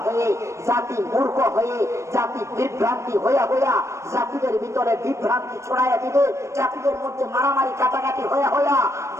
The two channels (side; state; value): left; late; 0.14 ms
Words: হয়ে, জাতি মূর্খ হয়ে, জাতি বিভ্রান্তি হইয়া হইয়া জাতিদের ভিতরে বিভ্রান্তি ছড়াইয়া দিবে, জাতিদের মধ্যে মারামারি কাটাকাটি হইয়া হইয়া